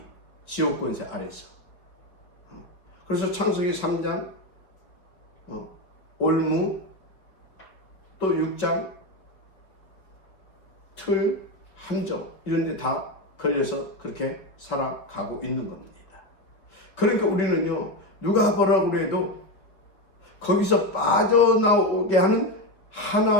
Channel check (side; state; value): right; late; 5.0 ms